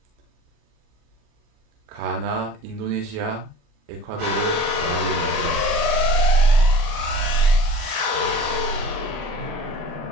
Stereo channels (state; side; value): late; left; 37 ms